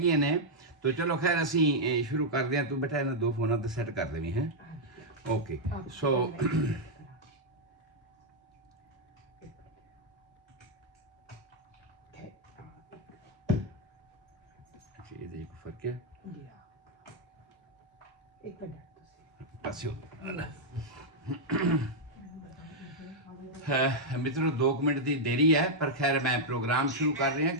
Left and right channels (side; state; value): both; normal; correlation -0.03